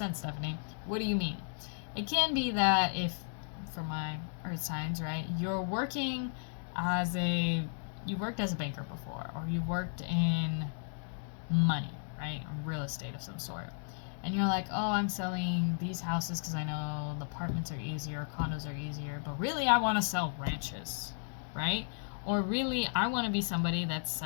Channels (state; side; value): silent; right; digital silence